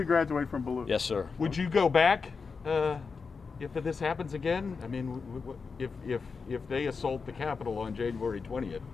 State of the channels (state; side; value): quieter; right; 5.0 dB